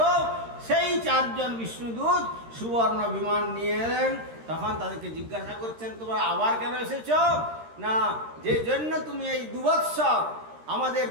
সেই 4 জন বিষ্ণুদূত সুবর্ণ বিমান নিয়ে এলেন। তখন তাদেরকে জিজ্ঞাসা করছেন, তোমরা আবার কেন এসেছ? না, যে জন্য তুমি এই 2 বৎসর আমাদের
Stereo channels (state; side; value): late; left; 13 ms